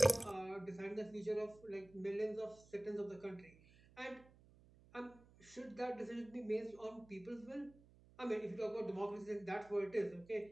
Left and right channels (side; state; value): right; noise; hum, 24 dB below the sound